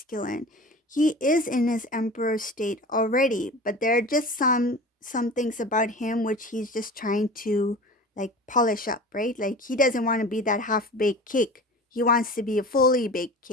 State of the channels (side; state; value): both; normal; correlation 0.36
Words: he is in his emperor state already, but there are just some things about him which he's just trying to like polish up, right? Like he doesn't want to be that half-baked cake. He wants to be a fully baked